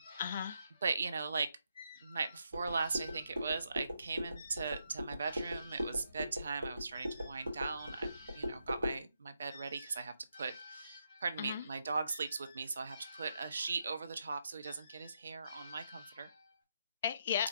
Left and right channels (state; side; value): inverted; both; correlation -0.81